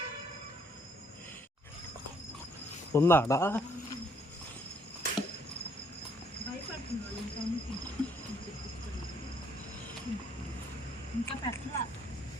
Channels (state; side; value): normal; both; correlation 0.67